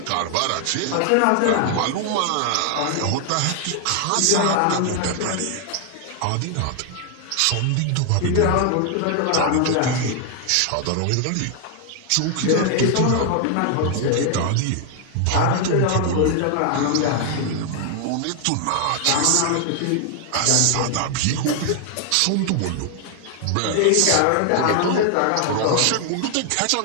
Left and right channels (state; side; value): different; both; correlation 0.00